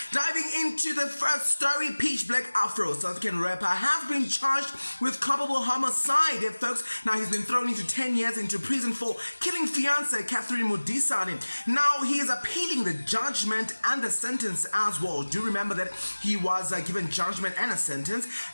Diving into the first story, Peach Black Afro, South African rapper, has been charged with culpable homicide, folks. Now, he's been thrown into 10 years into prison for killing fiancée Catherine Modisane. Now, he is appealing the judgment and the sentence as well. Do remember that he was given judgment and a sentence,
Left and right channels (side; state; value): both; inverted; correlation -1.00